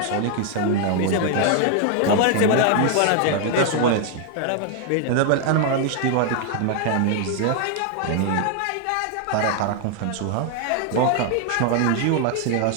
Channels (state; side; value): different; both; correlation 0.00